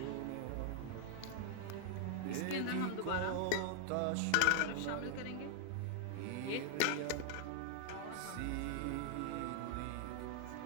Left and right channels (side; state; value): both; different; correlation 0.00